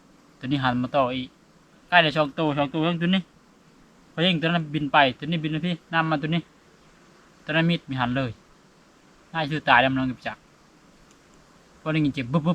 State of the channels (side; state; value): both; identical; correlation 1.00